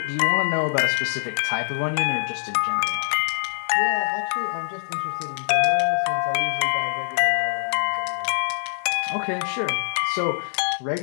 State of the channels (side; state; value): right; silent; 56 dB below the other